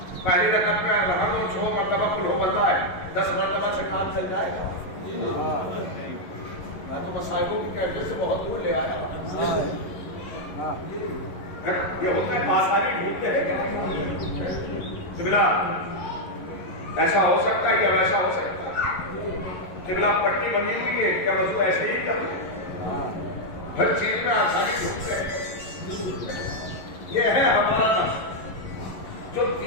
پہلی رکعت میں رحم و 6 مرتبہ قل ہو بتا ہے 10 مرتبہ سے کام چل جائے گا. میں تو مصائبوں کی کیفیت سے بہت دور لے آیا. یہ ہوتا ہے آسانی ڈھونڈتے ہیں کہ قبلہ ایسا ہو سکتا ہے یا ویسا ہو سکتا ہے. قبلہ پٹی بنی ہوئی ہے کیا وضو ایسے ہی کرتے ہیں. ہر چیز میں آسانی ڈھونڈتے ہیں. یہ ہے ہمارا نفس جو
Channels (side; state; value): right; late; 11 ms